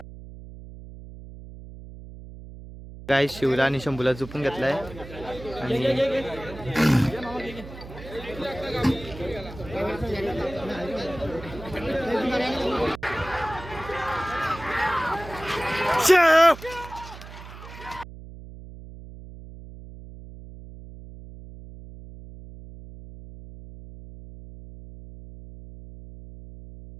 काय शिवला आणि शंभूला झोपून घेतलाय.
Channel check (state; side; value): noise; right; hum, 14 dB below the sound